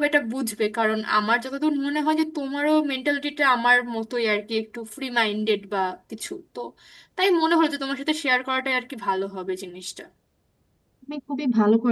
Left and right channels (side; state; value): both; identical; correlation 1.00